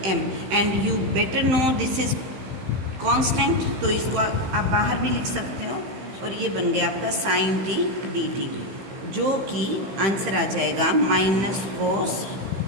m। And you better know this is constant, तो इसको आप बाहर भी लिख सकते हो। और ये बन गया आपका साइन t dt, जो कि आंसर आ जाएगा माइनस कोस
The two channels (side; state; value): left; late; 15 ms